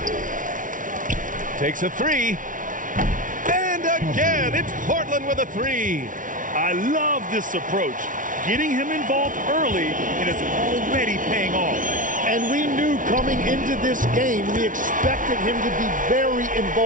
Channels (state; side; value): late; left; 0.38 ms